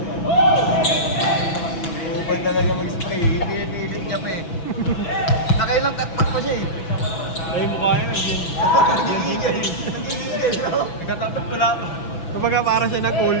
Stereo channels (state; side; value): late; right; 6.0 ms